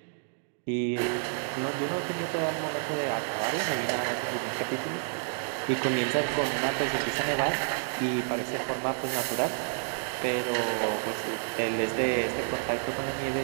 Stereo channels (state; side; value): silent; left; digital silence